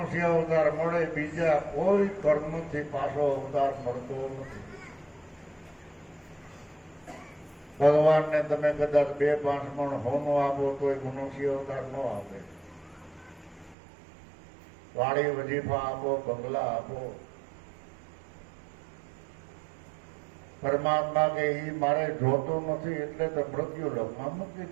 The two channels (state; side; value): drops out; left; at 13.8 s